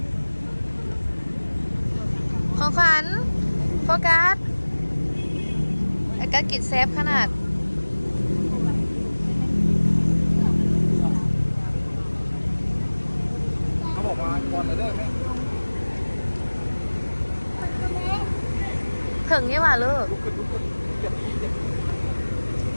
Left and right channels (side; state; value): both; inverted; correlation -1.00